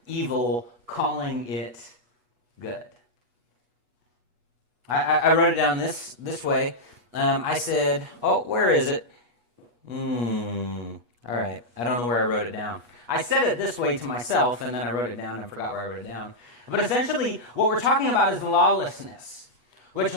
evil, calling it good. I wrote it down this way. I said, oh, where is it? All right, I don't know where I wrote it down. I said it this way to myself, and then I wrote it down and forgot where I wrote it down. But essentially, what we're talking about is lawlessness, which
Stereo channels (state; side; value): late; left; 8.3 ms